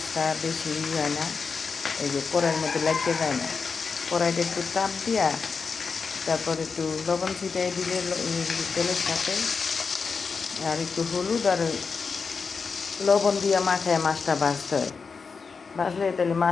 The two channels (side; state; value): right; quieter; 5.1 dB